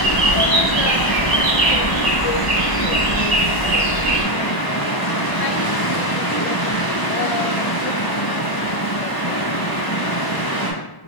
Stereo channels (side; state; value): right; late; 1.0 ms